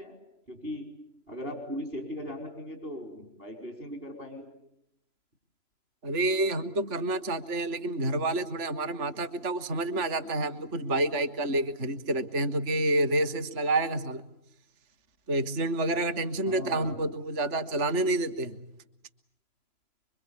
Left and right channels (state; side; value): late; left; 3.4 ms